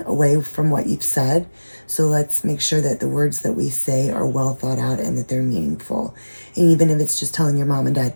away from what you've said. So let's make sure that the words that we say are well thought out and that they're meaningful. And even if it's just telling your mom and dad,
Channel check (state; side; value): inverted; both; correlation -1.00